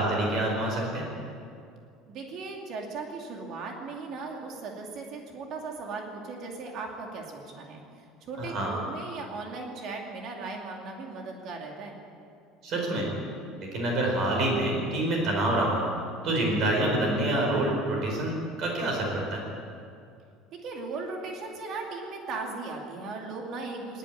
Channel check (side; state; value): both; normal; correlation 0.43